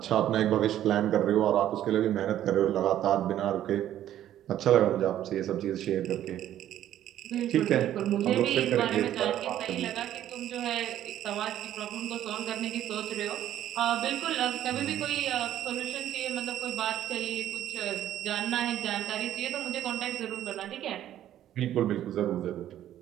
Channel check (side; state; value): left; quieter; 11.9 dB